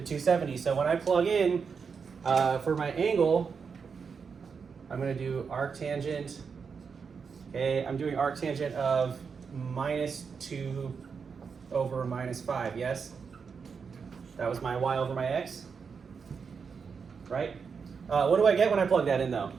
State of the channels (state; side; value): quieter; left; 5.8 dB